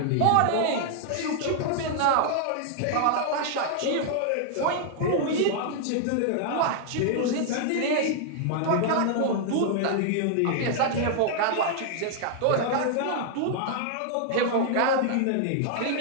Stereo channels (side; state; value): both; different; correlation 0.00